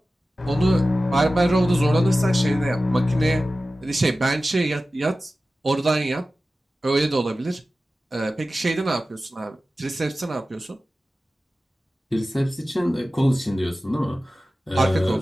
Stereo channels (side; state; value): both; normal; correlation 0.95